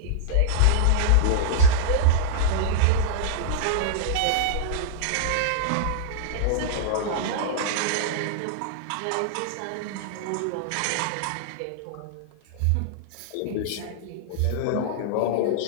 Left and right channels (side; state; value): both; different; correlation -0.01